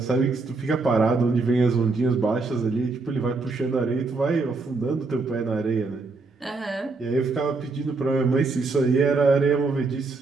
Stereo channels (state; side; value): quieter; left; 3.8 dB